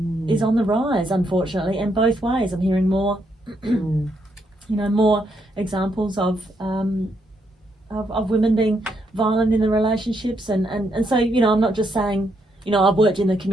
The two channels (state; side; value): normal; both; correlation 0.76